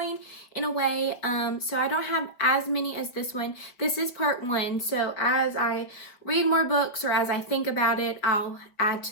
in a way, so I don't have as many as this one. This is part one, so as I read more books or as I think about it, I'll add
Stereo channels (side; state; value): right; late; 5.2 ms